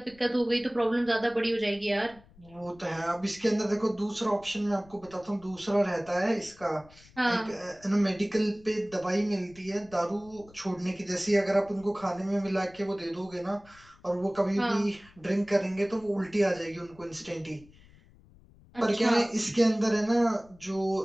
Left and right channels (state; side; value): noise; left; rumble, 25 dB below the sound